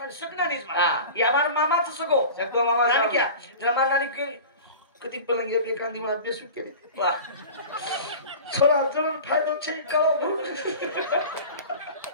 सकना नाही हां या हमारा मामाचं सगो मामा नानी क्या जरा मारणारी केली कधी पलंगी एखादी मला बेसू केली वा थोडा जण फायदा छे का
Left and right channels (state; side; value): inverted; both; correlation -0.36